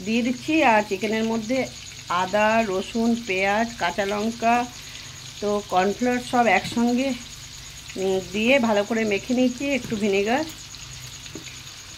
দিয়ে দিচ্ছি। আর চিকেনের মধ্যে আদা, রসুন, পেঁয়াজ, কাঁচা লঙ্কা, তো কর্নফ্লাওয়ার সব একসঙ্গে দিয়ে ভালো করে মেখে নিয়েছি, একটু ভিনেগার।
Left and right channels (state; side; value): identical; both; correlation 1.00